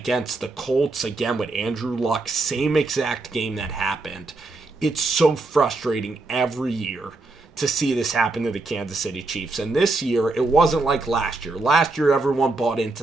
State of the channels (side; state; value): left; quieter; 3.3 dB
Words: the Colts, again with Andrew Luck, same exact game that happened. It's so frustrating every year to see this happen to the Kansas City Chiefs. And this year, it wasn't like last year. Last year, everyone bought into